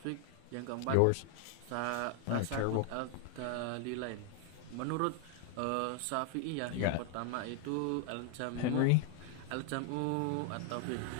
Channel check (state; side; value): different; both; correlation 0.00